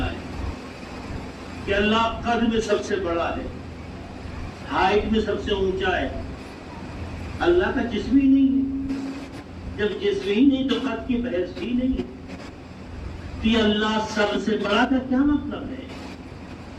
ہے کہ اللہ قد میں سب سے بڑا ہے، ہائٹ میں سب سے اونچا ہے۔ اللہ کا جسم ہی نہیں ہے، جب جسم ہی نہیں تو قد کی بحث ہی نہیں ہے۔ تو یہ اللہ سب سے بڑا کا کیا مطلب ہے؟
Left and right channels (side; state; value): both; identical; correlation 1.00